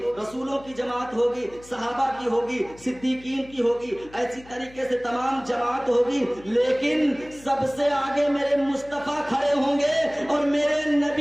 رسولوں کی جماعت ہوگی، صحابہ کی ہوگی، صدیقین کی ہوگی، ایسی طریقے سے تمام جماعت ہوگی، لیکن سب سے آگے میرے مصطفیٰ کھڑے ہوں گے اور میرے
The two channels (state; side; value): noise; left; hum, 23 dB below the sound